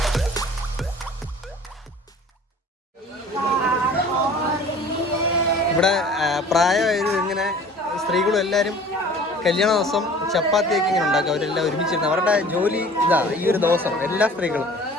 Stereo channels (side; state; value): both; normal; correlation 0.46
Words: ഇവിടെ പ്രായമായത് ഇങ്ങനെ സ്ത്രീകളും എല്ലാവരും കല്യാണ ദിവസം ചപ്പാത്തിയൊക്കെ ഇങ്ങനെ ഉണ്ടാക്കും. അവരെല്ലാം ഒരുമിച്ചിരുന്ന് അവരുടെ ജോലി ഇതാ ഈ ഒരു ദിവസം. എല്ലാ സ്ത്രീകളും